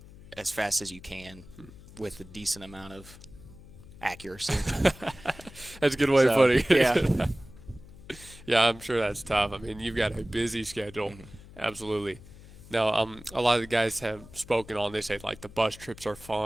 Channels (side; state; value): left; noise; hum, 19 dB below the sound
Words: as fast as you can with a decent amount of accuracy. That's a good way of putting it. Yeah. Yeah, I'm sure that's tough. I mean, you've got a busy schedule. Mm-hmm. Absolutely. Now, a lot of the guys have spoken on, they say, like, the bus trips are